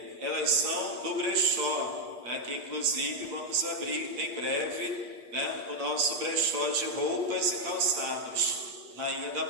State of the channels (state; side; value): late; left; 8.8 ms